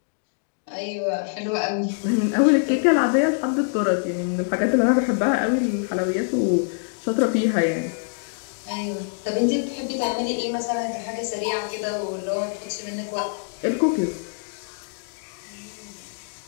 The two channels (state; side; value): silent; right; digital silence